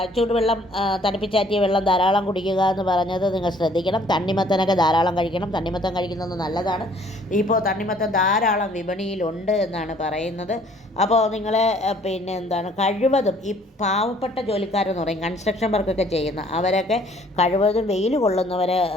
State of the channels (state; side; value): normal; both; correlation 0.59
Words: ചൂടുവെള്ളം, തണുപ്പിച്ചാറ്റിയ വെള്ളം ധാരാളം കുടിക്കുക എന്ന് പറഞ്ഞത് നിങ്ങൾ ശ്രദ്ധിക്കണം. തണ്ണിമത്തനൊക്കെ ധാരാളം കഴിക്കണം. തണ്ണിമത്തൻ കഴിക്കുന്നത് നല്ലതാണ്. ഇപ്പോൾ തണ്ണിമത്തൻ ധാരാളം വിപണിയിലുണ്ട് എന്നാണ് പറയുന്നത്. അപ്പോൾ നിങ്ങൾ കഴിവതും ഈ പാവപ്പെട്ട ജോലിക്കാരെന്ന് പറയും, കൺസ്ട്രക്ഷൻ വർക്കൊക്കെ ചെയ്യുന്ന അവരൊക്കെ കഴിവതും വെയിൽ കൊള്ളുന്നവരെ